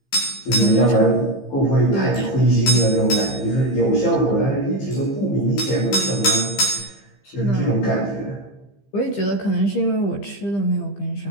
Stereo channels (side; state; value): right; late; 15 ms